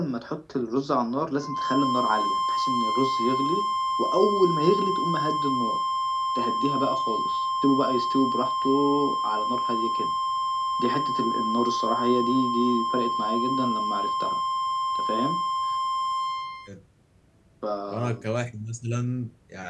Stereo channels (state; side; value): identical; both; correlation 1.00